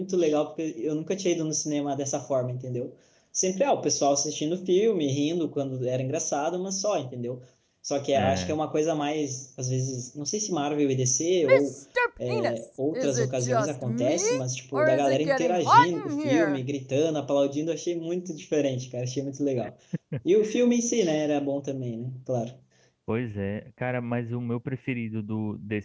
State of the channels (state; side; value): identical; both; correlation 1.00